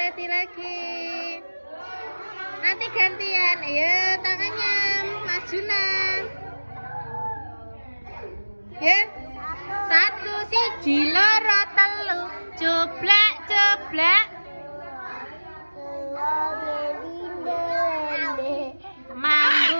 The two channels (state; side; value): inverted; both; correlation -1.00